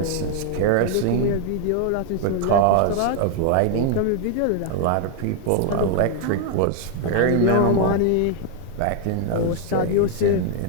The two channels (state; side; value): different; both; correlation 0.00